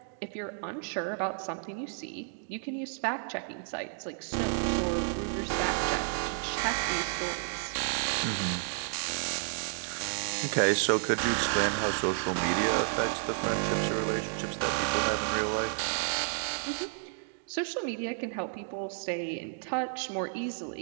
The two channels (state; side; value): silent; left; digital silence